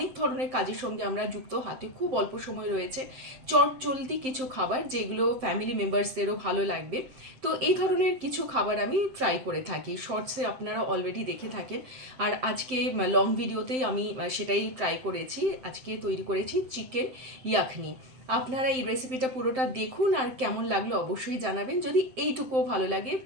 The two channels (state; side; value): late; left; 7.7 ms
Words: ধরনের কাজের সঙ্গে আমরা যুক্ত, হাতে খুব অল্প সময় রয়েছে, চট জলদি কিছু খাবার যেগুলো ফ্যামিলি মেম্বার্সদেরও ভালো লাগবে। তো এই ধরনের কিছু খাবার আমি ট্রাই করে থাকি, শর্টসে আপনারা অলরেডি দেখে থাকেন। আর আজকে লং ভিডিওতেই আমি সেটাই ট্রাই করেছি। আজকে তৈরি করেছি চিকেন ইয়াখনি। আপনারা এই রেসিপিটা পুরোটা দেখুন, আর কেমন লাগলো অবশ্যই জানাবেন। যদি এইটুকুও ভালো লাগে